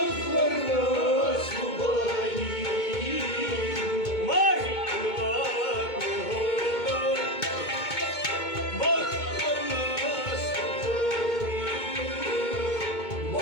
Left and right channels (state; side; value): late; right; 2.2 ms